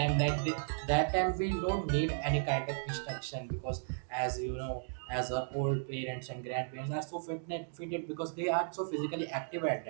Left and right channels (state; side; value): silent; left; digital silence